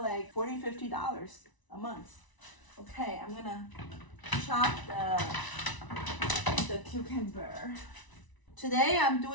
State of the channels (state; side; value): late; right; 1.0 ms